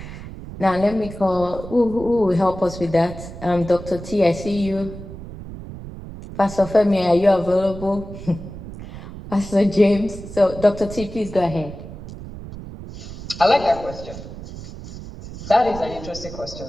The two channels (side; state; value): right; noise; rumble, 12 dB below the sound